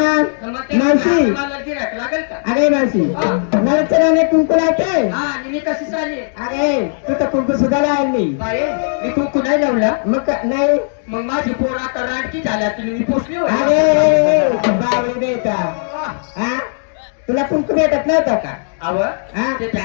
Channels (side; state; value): right; silent; digital silence